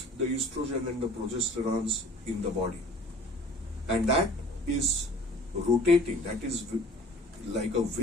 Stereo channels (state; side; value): normal; both; correlation 0.48